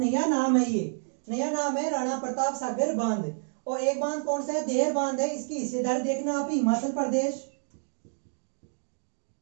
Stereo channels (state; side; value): silent; left; digital silence